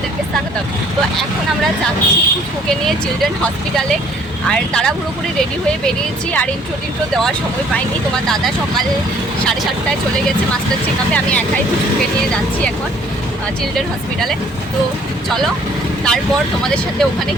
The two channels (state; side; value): normal; both; correlation 0.58